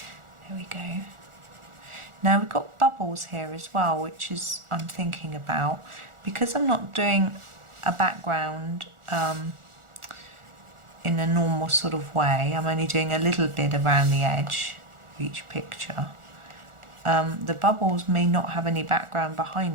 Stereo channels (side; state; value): left; late; 1.4 ms